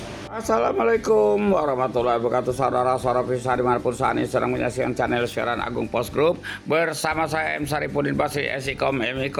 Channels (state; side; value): identical; both; correlation 1.00